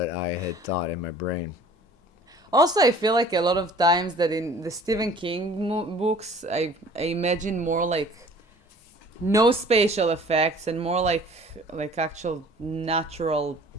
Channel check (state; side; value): normal; both; correlation 0.49